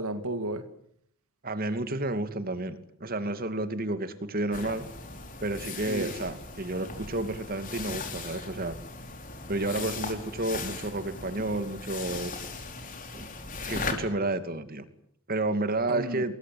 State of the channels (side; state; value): both; normal; correlation 0.18